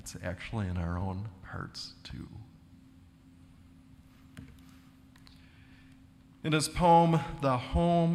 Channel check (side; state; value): both; identical; correlation 1.00